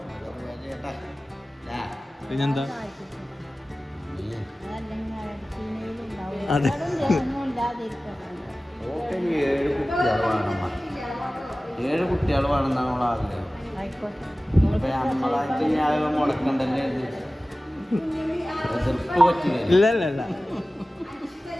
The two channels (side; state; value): both; normal; correlation 0.97